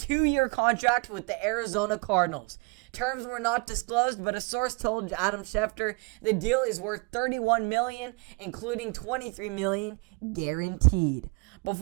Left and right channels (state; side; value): quieter; left; 30.0 dB